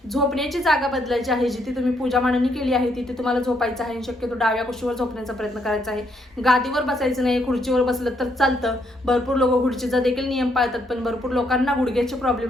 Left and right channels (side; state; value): both; normal; correlation 0.73